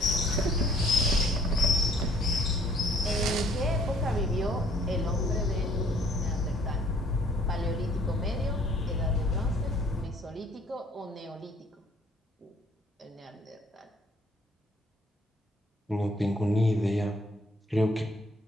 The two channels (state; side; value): normal; both; correlation 0.59